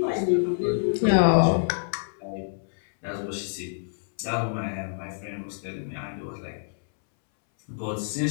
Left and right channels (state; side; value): silent; right; 60 dB below the other